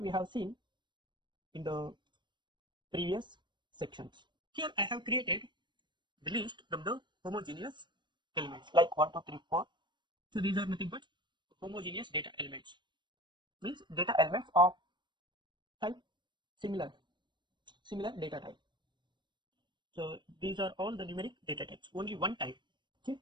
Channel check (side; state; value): left; late; 0.22 ms